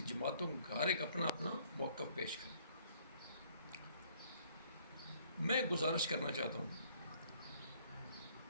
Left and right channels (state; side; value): inverted; both; correlation -0.62